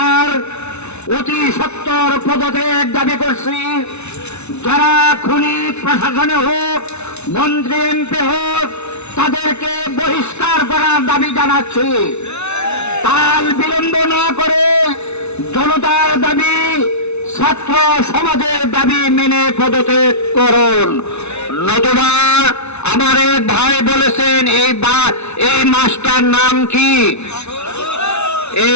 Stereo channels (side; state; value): right; late; 0.81 ms